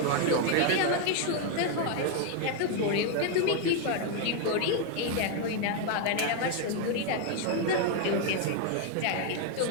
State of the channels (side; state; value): both; different; correlation 0.01